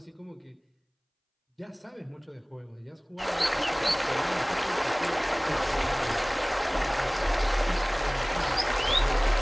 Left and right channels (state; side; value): identical; both; correlation 1.00